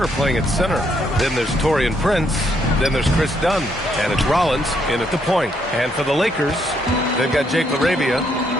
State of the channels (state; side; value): normal; both; correlation 0.73